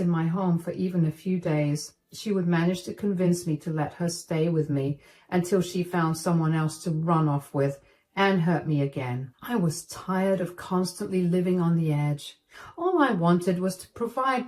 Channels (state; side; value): identical; both; correlation 1.00